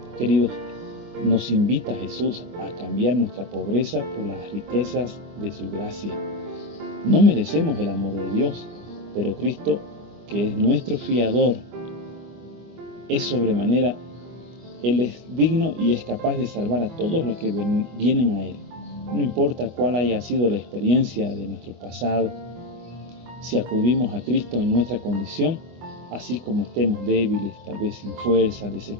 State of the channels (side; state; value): left; late; 24 ms